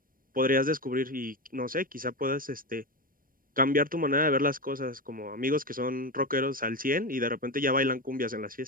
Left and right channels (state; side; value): late; left; 0.41 ms